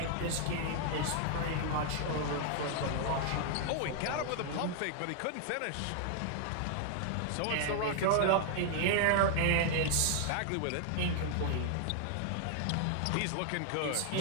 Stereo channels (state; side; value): different; both; correlation 0.00